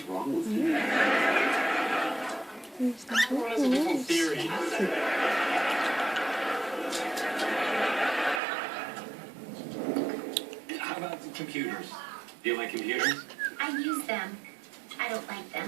wrong with you? Everyone has a different theory. How about computers? Do you like computers? I use them. I don't like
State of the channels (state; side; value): drops out; left; at 8.4 s